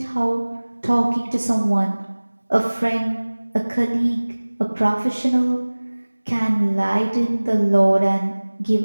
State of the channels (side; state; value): both; inverted; correlation -1.00